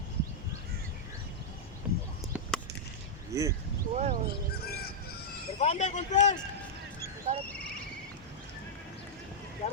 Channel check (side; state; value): both; normal; correlation -0.08